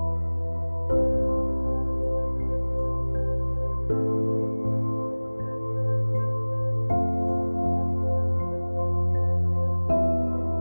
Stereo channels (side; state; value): both; inverted; correlation -1.00